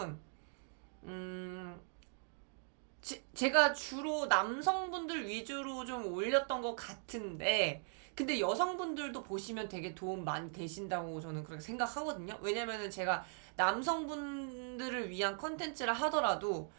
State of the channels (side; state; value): left; silent; 51 dB below the other